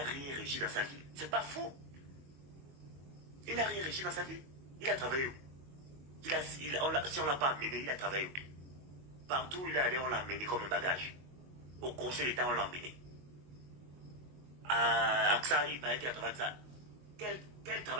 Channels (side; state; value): left; late; 22 ms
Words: rien réussi dans sa vie. C'est pas faux. Il n'a rien réussi dans sa vie. Il a travaillé où? Si on ne l'a pas amené, il a travaillé où? Partout où il est allé, on l'a amené comme un bagage. Au conseil d'État, on l'a amené. À AXA, il paraît qu'il a travaillé avec ça. Quel